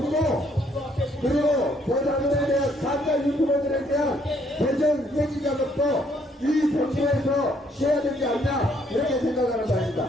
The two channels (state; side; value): normal; both; correlation 0.67